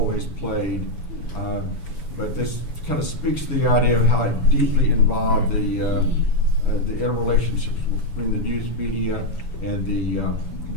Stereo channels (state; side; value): late; right; 7.0 ms